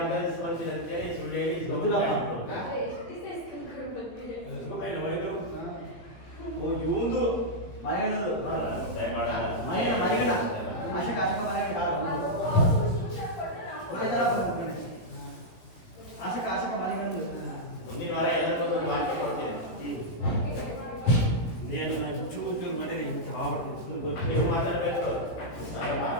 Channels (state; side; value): late; right; 18 ms